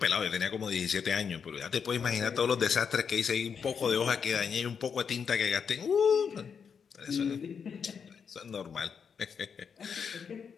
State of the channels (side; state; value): right; quieter; 6.6 dB